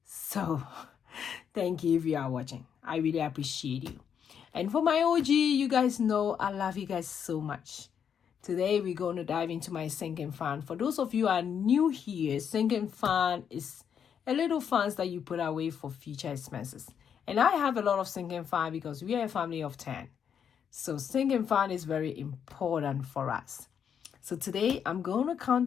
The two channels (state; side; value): quieter; right; 7.9 dB